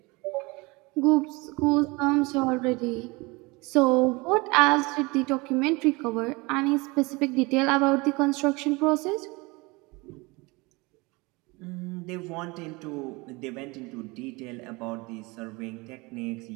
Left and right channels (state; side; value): quieter; left; 25.3 dB